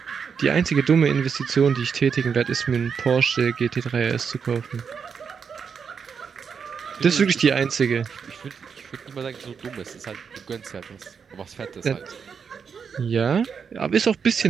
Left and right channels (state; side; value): quieter; left; 6.4 dB